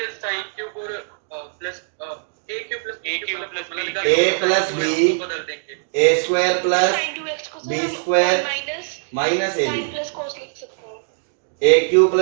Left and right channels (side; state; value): left; silent; digital silence